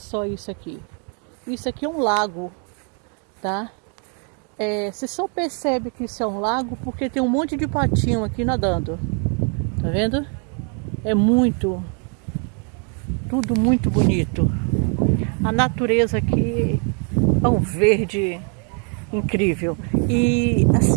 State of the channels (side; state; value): left; quieter; 40.0 dB